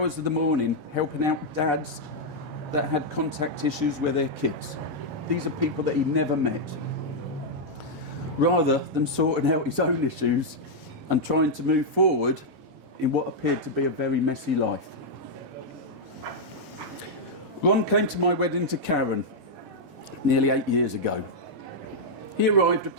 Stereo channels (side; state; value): both; normal; correlation -0.04